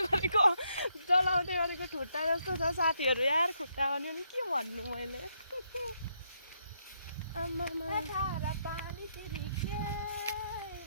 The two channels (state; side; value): inverted; both; correlation -0.77